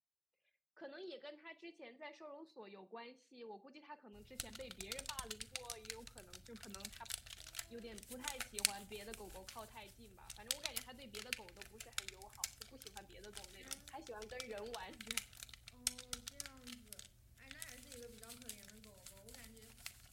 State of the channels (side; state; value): both; identical; correlation 1.00